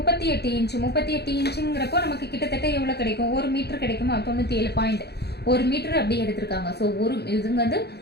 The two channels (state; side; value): late; right; 0.48 ms